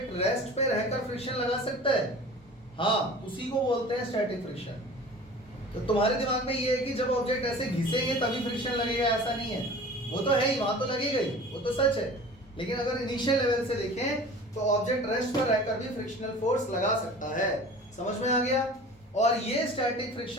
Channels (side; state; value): both; normal; correlation 0.41